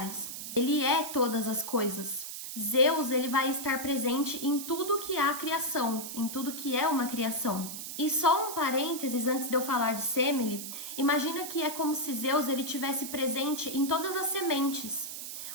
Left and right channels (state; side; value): noise; right; hiss, 8 dB below the sound